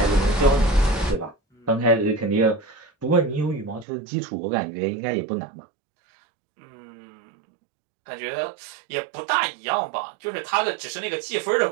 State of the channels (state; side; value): drops out; left; at 3.9 s